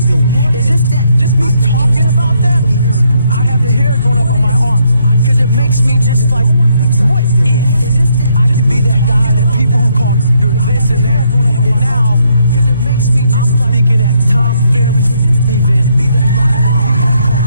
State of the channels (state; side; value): inverted; both; correlation -0.72